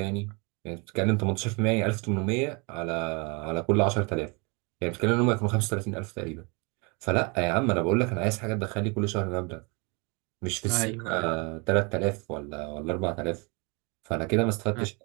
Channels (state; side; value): quieter; left; 31.1 dB